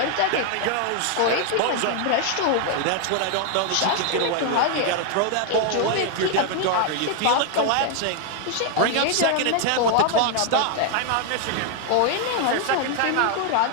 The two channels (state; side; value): different; both; correlation 0.00